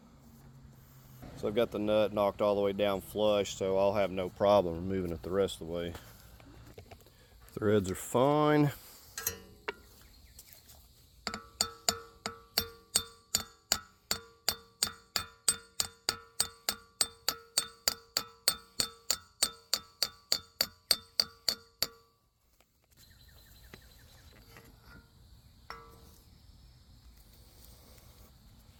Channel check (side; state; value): both; identical; correlation 1.00